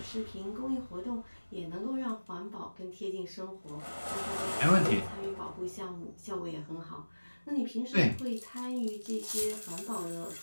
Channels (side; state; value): both; inverted; correlation -1.00